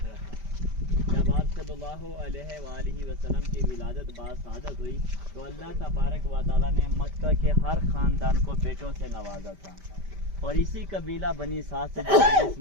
था। जब आप सल्लल्लाहु अलैहि वसल्लम की विलादत बासादत हुई तो अल्लाह तबारक व तआला ने मक्का के हर ख़ानदान को बेटों से नवाजा था। और इसी कबीला बनी साद से जिस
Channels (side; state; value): left; late; 5.1 ms